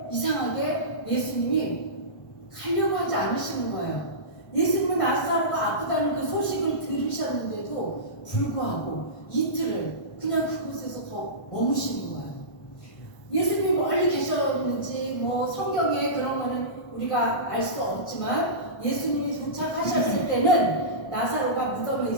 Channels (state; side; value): late; right; 1.1 ms